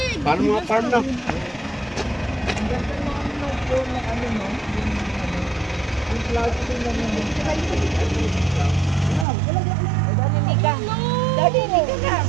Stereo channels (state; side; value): drops out; left; at 9.2 s